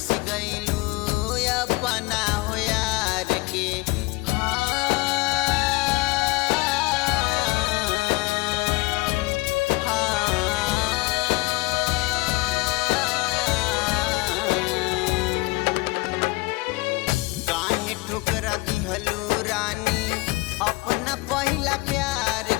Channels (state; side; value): quieter; right; 23.4 dB